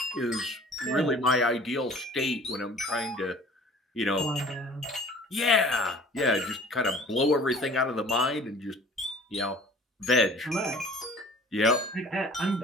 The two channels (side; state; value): both; normal; correlation 0.49